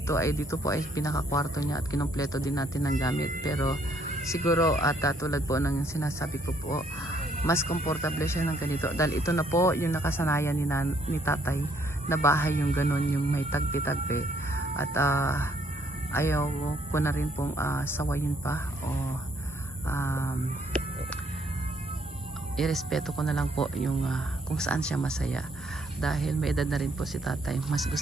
ay pinaka-kwarto niya at kinumpleto din natin ng gamit. Pero siguro at tulad po ng sinasabi ko po, mas komportable siya ng ganito dahil ito na po yung nakasanayan ni tatay na bahay yung ganun, yung may tagpi-tagpi. At ayaw ko na rin pong sawayin pa o irespeto ko na lang po yung kung saan siya masaya dahil may edad na rin po si tatay. Mas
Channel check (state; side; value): normal; both; correlation 0.67